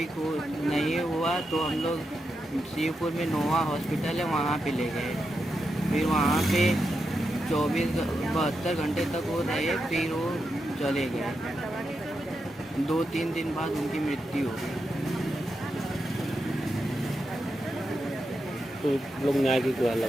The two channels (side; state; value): both; normal; correlation 0.87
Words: नहीं हुआ तो हम लोग शिवपुर में नोवा हॉस्पिटल है वहाँ पे ले गए। फिर वहाँ पे 72 घंटे तक वो रहे, फिर वो चले गए। 2-3 दिन बाद उनकी मृत्यु हो गई। तो लोग न्याय की गुहार